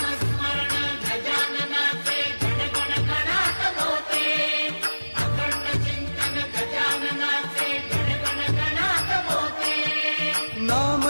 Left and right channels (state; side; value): inverted; both; correlation -1.00